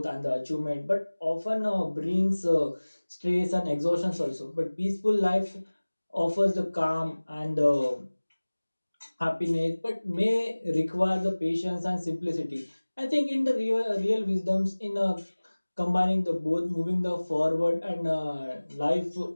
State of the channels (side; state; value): both; inverted; correlation -1.00